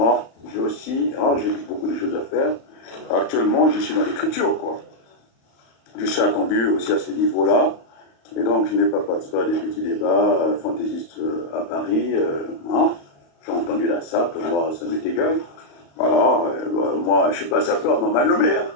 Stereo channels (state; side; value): late; right; 35 ms